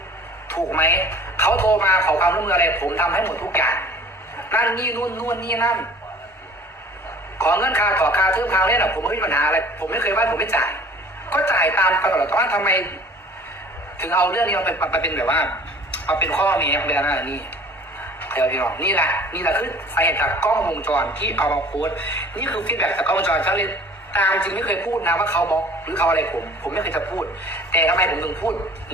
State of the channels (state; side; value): normal; both; correlation 0.48